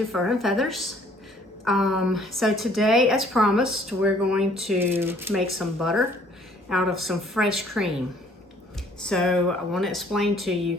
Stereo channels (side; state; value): both; normal; correlation 0.59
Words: Fur and Feathers. So today, as promised, we're going to make some butter out of some fresh cream. So I want to explain to you